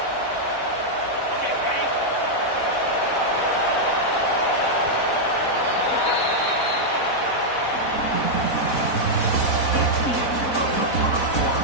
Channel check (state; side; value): late; right; 4.0 ms